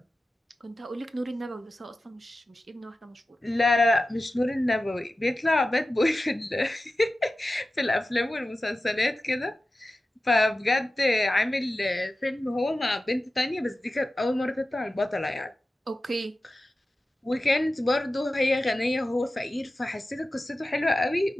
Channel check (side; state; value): both; normal; correlation 0.94